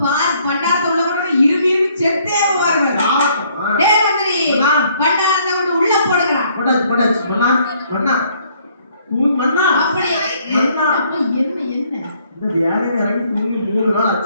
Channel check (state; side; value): inverted; both; correlation -0.65